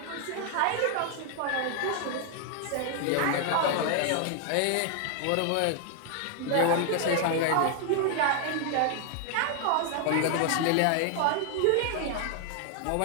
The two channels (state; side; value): different; both; correlation 0.00